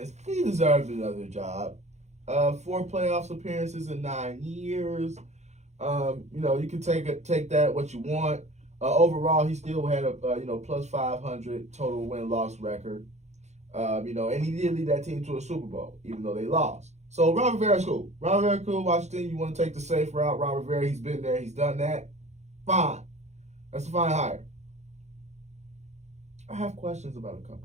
He deserved another job. 4 playoffs appearances in 9 years. You can take that what you want. Overall, he still had a plus 500 total win-loss record. And he did lead that team to a Super Bowl, even though they lost. So Ron Rivera's cool. Ron Rivera cool. Washington, you want to take the safe route. Ron Rivera, he's been there. He's done that. Fine. That's a fine hire. I have questions about a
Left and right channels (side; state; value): left; late; 0.33 ms